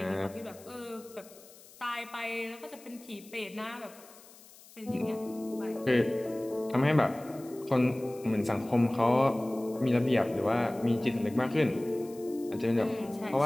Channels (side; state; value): left; noise; hiss, 22 dB below the sound